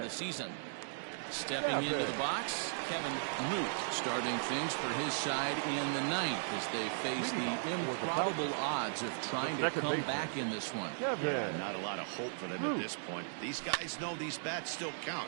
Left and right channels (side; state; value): left; silent; digital silence